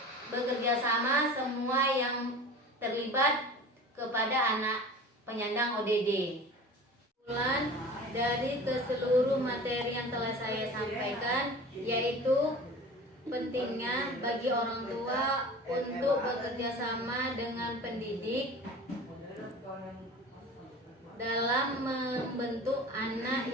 bekerja sama semua yang terlibat kepada anak penyandang ODD. Kesimpulan dari keseluruh materi yang telah saya sampaikan yaitu pentingnya bagi orang tua untuk bekerja sama dengan pendidik dalam membentuk anak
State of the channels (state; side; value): normal; both; correlation 0.38